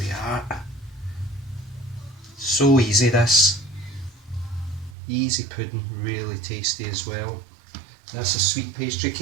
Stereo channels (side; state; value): left; drops out; at 5.0 s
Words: are. So easy this. Easy pudding, really tasty as well. That's a sweet pastry